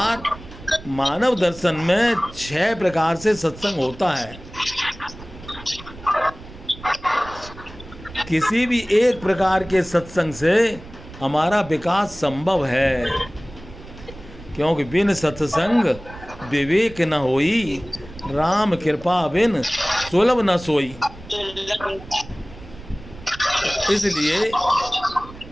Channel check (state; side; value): noise; right; rumble, 17 dB below the sound